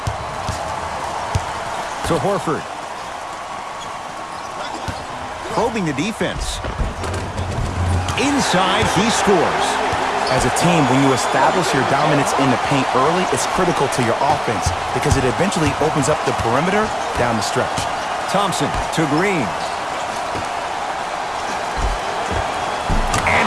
To Horford. Probing the defense. Inside, he scores. As a team, when you establish your dominance in the paint early, it's critical to your offense because it eventually opens up the perimeter down the stretch. Thompson to Green. And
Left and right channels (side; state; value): both; identical; correlation 1.00